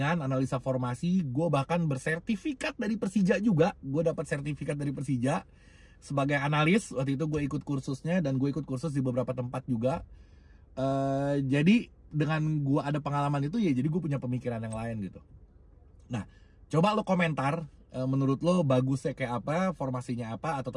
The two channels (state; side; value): identical; both; correlation 1.00